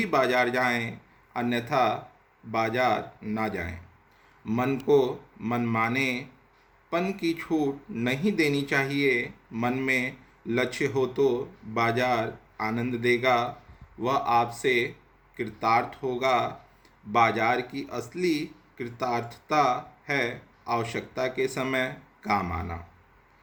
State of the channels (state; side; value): identical; both; correlation 1.00